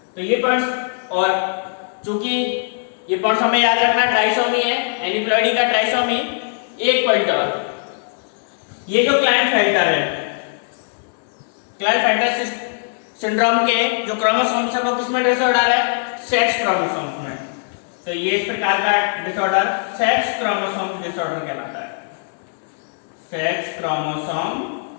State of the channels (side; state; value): right; silent; digital silence